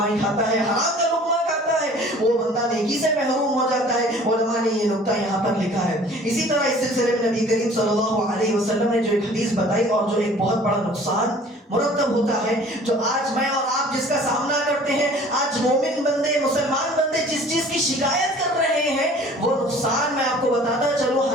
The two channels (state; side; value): normal; both; correlation 0.49